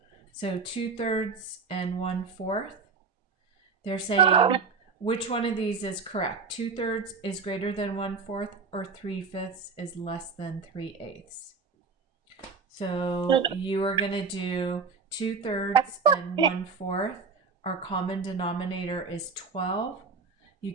So 2/3 and 1/4. They're saying which one of these is correct? 2/3 is greater than 1/4, or 3/5 is less than 3/8. So you are going to do 2/3 and 1/4. Our common denominator is 12. You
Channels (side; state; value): left; quieter; 4.9 dB